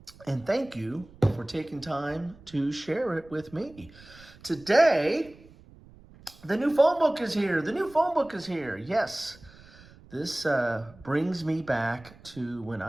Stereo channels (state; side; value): noise; right; rumble, 23 dB below the sound